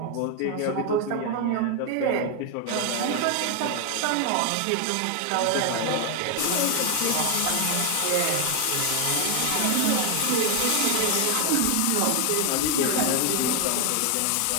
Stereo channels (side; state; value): both; different; correlation 0.01